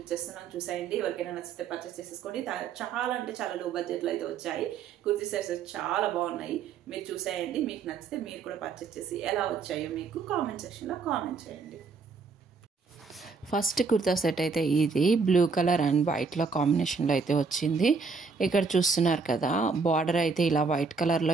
చూసేయండి. ఎవరికైనా నచ్చితే పర్చేస్ చేసేసుకోండి. చాలా అంటే చాలా లో బడ్జెట్లో అయితే వచ్చాయి. కుర్తీ సెట్స్ చాలా బాగున్నాయి. మీరు చూసేయండి. మీకు నచ్చితే మీరు కూడా పర్చేస్ చేసి ఎలా వచ్చాయో మీకు కామెంట్ సెక్షన్లో కామెంట్ చేయండి. ఫస్ట్ కుర్తా సెట్ అయితే ఇది బ్లూ కలర్ అండ్ వైట్లో కాంబినేషన్లో అయితే వచ్చింది. ఇక్కడ చూస్తున్నారు కదా, బార్డర్ అయితే ఇలా వైట్ కలర్లో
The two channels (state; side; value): quieter; left; 4.9 dB